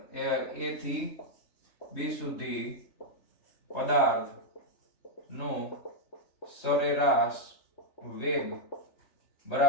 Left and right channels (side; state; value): right; late; 3.3 ms